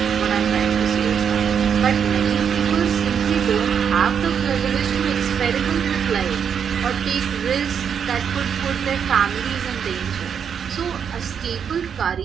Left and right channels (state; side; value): quieter; left; 7.5 dB